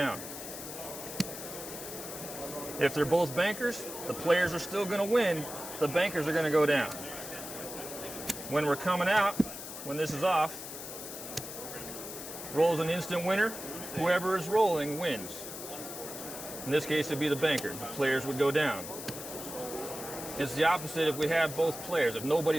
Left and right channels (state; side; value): noise; left; hiss, 9 dB below the sound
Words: If they're both bankers, the players are still going to win, the bankers are going to go down. When we're coming out, when this is off, rolls an instant winner, whoever is rolling wins. In this case, it'd be the banker. The players would go down. It's the opposite if we have both players. If